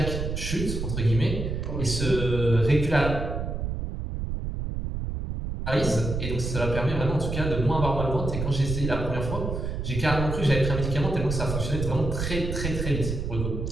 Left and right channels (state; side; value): noise; right; rumble, 3 dB below the sound